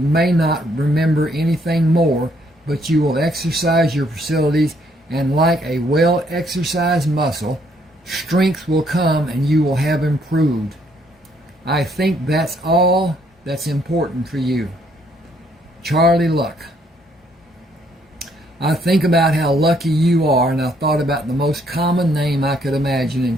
not remember anything more, but you will exercise your facilities, and like a well-exercised muscle, strength will come and you will have improved. I think that's all that's important for you. Charlie Luck. I think about how lucky you are, and I thought about the most common name I could imagine, and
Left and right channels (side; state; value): both; normal; correlation 0.69